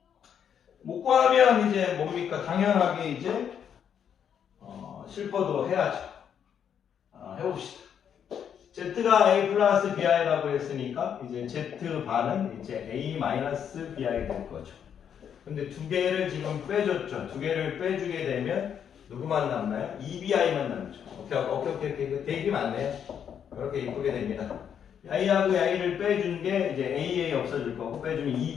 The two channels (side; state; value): right; quieter; 8.3 dB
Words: 못 구하면 이제 뭡니까? 당연하게 이제 실퍼도 해야죠. 해봅시다. Z가 A 플러스 BI라고 했으니까 이제 Z반은 이제 A 마이너스 BI 될 거죠. 근데 두 개를 지금 빼줬죠. 두 개를 빼주게 되면 누구만 남나요? EBI만 남죠. 오케이. 되게 많네요. 그렇게 이쁘게 됩니다. I하고 I를 빼준 게 이제 AA 없어질 거고 빼주면